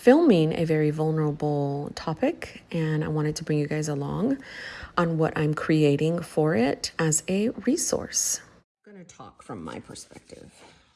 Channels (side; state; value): both; identical; correlation 1.00